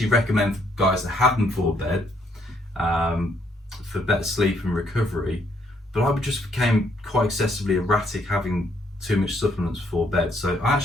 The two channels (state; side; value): normal; both; correlation 0.70